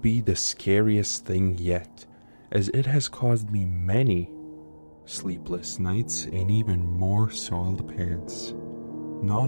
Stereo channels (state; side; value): inverted; both; correlation -1.00